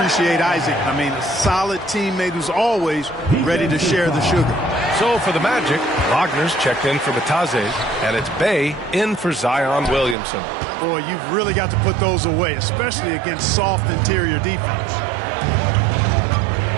Isaac. I mean, a solid teammate who's always ready to share the sugar. So for the Magic, Wagner's checked in for Batadze, and it's Bay in for Zion Williamson. Boy, you've really got to put those away, especially against soft interior defense.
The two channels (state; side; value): drops out; left; at 10.2 s